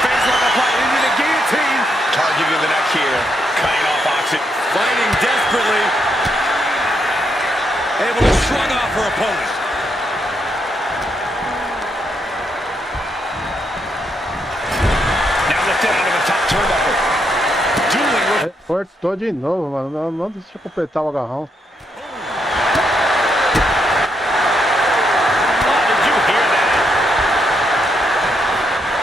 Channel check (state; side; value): normal; both; correlation 0.78